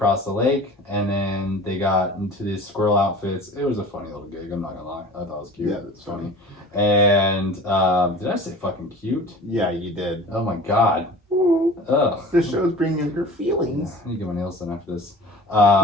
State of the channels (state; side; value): normal; both; correlation 0.40